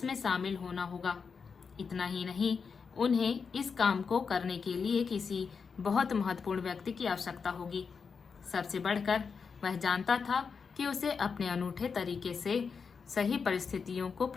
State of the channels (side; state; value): right; quieter; 5.6 dB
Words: शामिल होना होगा। इतना ही नहीं, उन्हें इस काम को करने के लिए किसी बहुत महत्वपूर्ण व्यक्ति की आवश्यकता होगी। सबसे बढ़कर वह जानता था कि उसे अपने अनूठे तरीके से सही परिस्थितियों को